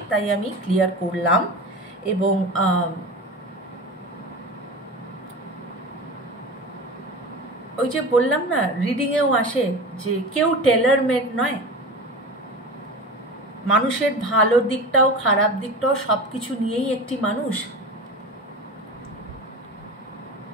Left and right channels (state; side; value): normal; both; correlation 0.30